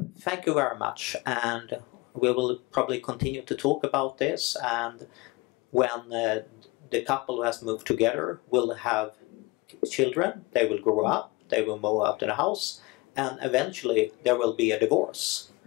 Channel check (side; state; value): right; quieter; 23.2 dB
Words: thank you very much, and we will probably continue to talk about this, and when the couple who has moved together will have children, they will grow up, they will move out of the house, and eventually there will be a divorce,